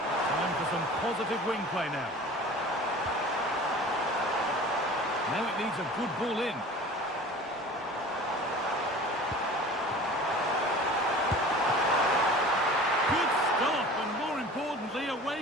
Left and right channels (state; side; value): normal; both; correlation 0.41